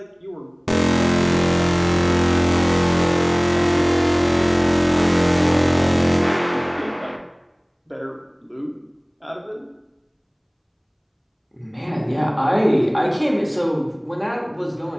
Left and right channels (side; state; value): both; identical; correlation 1.00